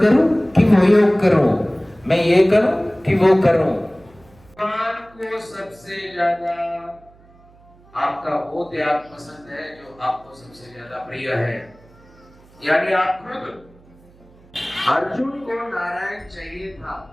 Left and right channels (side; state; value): right; noise; hum, 27 dB below the sound